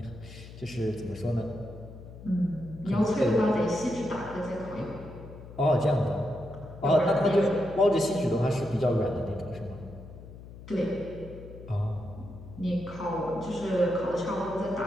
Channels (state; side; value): noise; left; hum, 15 dB below the sound